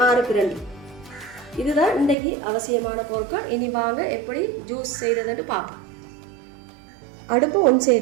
6 கிரண்டி. இதுதான் இன்றைக்கு அவசியமான பொருட்கள். இனி வாங்க எப்படி ஜூஸ் செய்கிறதுன்னு பார்ப்போம். அடுப்பு ஒன்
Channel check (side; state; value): left; drops out; at 2.1 s